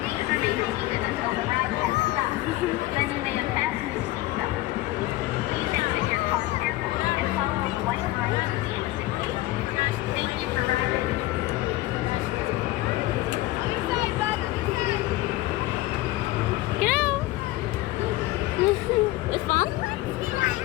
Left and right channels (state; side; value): quieter; right; 17.6 dB